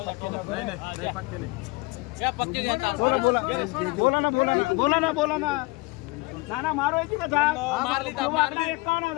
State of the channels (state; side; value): quieter; right; 24.9 dB